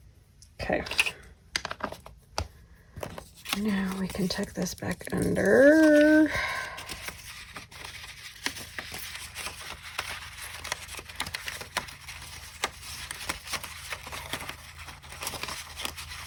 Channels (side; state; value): both; identical; correlation 1.00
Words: Okay. Now we can tuck this back under.